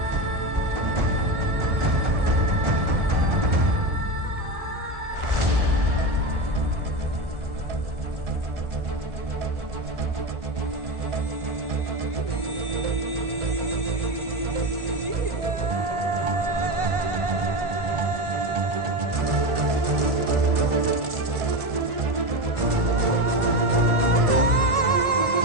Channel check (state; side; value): late; left; 1.7 ms